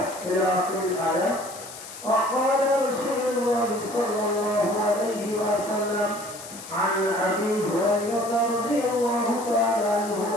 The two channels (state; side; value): noise; left; hiss, 14 dB below the sound